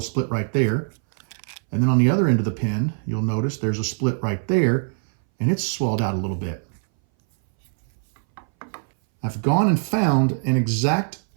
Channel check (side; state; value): left; silent; 61 dB below the other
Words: split right there. And then on the other end of the pin, you'll notice there's a split right there and it's swelled out a little bit. I've gone and found an exact